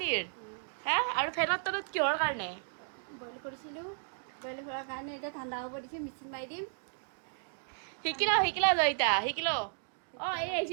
হে? আৰু ফেনৰ তলত কিহৰ কাৰণে? বইল কৰিছিলোঁ, বইল কৰাৰ কাৰণে এতিয়া ঠাণ্ডা হ'ব দিছোঁ, মিক্সিত মাৰি দিম। শিকিলা জয়িতা, শিকিলো। অঁ এই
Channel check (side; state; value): left; silent; digital silence